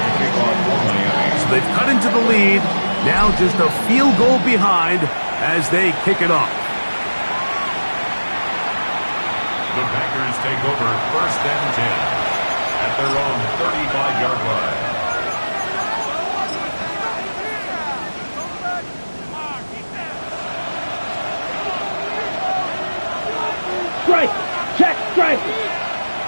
kick off for Miami. So they've cut into the lead. Now just a field goal behind as they kick it off. The Packers take over 1st and 10 at their own 35-yard line. Strike. Check. Strike.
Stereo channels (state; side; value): inverted; both; correlation -1.00